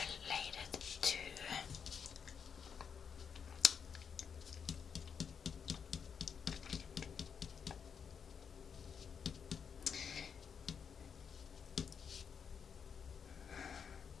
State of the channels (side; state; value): right; quieter; 6.8 dB